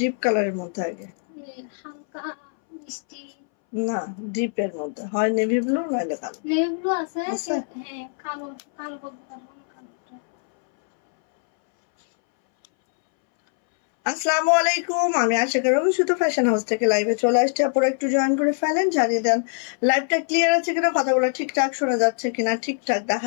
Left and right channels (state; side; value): silent; right; 62 dB below the other